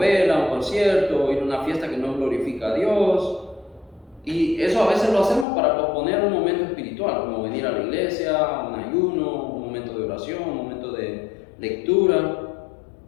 un concierto, ir a una fiesta que no glorifica a Dios. Y eso a veces lo hacemos para posponer un momento espiritual, como venir a la iglesia, un ayuno, un momento de oración, un momento de lectura.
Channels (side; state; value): right; drops out; at 5.5 s